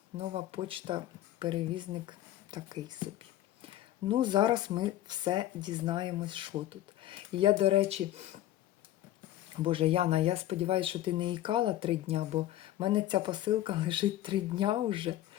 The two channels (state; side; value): quieter; right; 13.9 dB